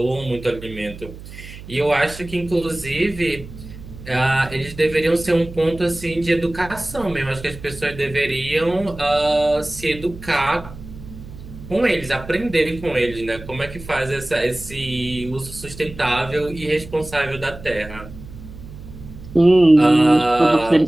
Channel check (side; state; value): right; noise; hum, 15 dB below the sound